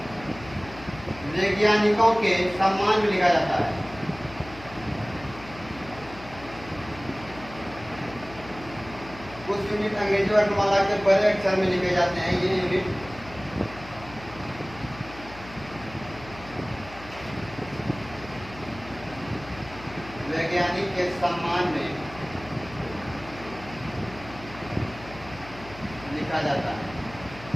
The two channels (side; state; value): left; noise; hum, 16 dB below the sound